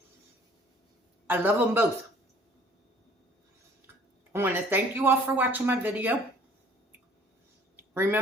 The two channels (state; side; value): normal; both; correlation 0.54